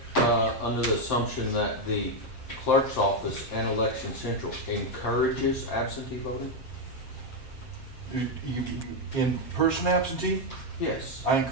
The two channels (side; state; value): right; late; 7.6 ms